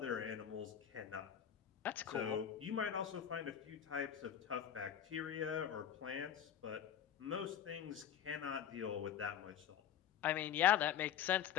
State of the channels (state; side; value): quieter; right; 9.6 dB